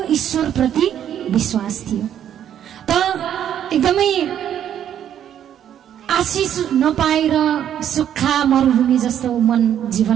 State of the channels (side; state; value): left; quieter; 10.0 dB